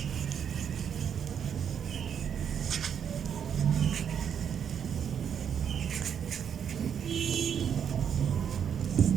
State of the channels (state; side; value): quieter; left; 8.1 dB